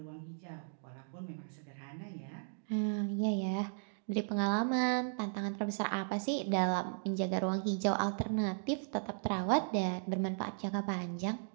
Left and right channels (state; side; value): silent; left; digital silence